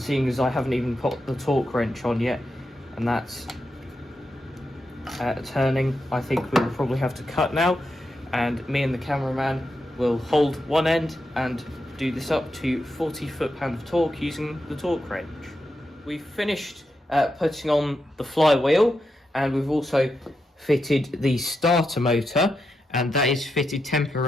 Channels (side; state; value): both; normal; correlation 0.86